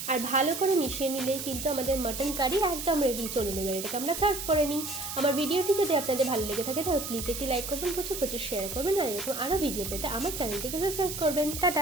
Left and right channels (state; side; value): noise; right; hiss, 6 dB below the sound